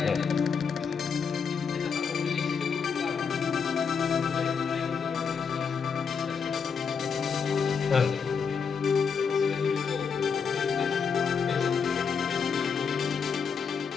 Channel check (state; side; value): quieter; right; 6.0 dB